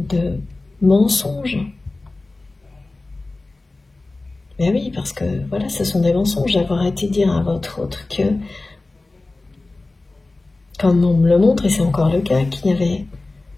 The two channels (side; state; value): right; quieter; 3.2 dB